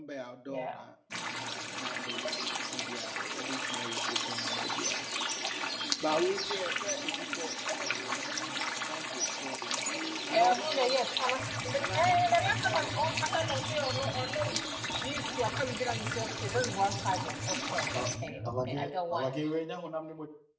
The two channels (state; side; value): identical; both; correlation 1.00